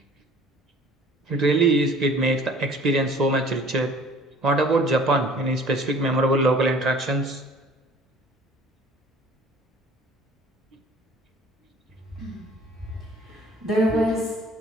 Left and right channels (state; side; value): normal; both; correlation 0.50